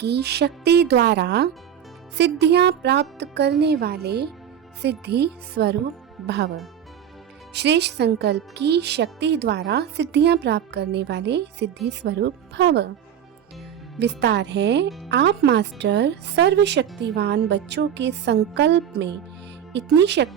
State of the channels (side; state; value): left; quieter; 9.1 dB